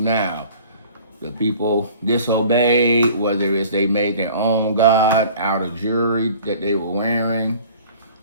The people disobeyed, whether it's they made their own God out of jewelry that they were wearing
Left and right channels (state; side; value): inverted; both; correlation -0.48